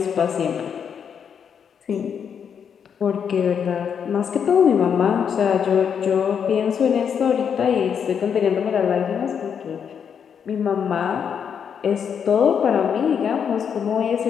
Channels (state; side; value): quieter; right; 7.5 dB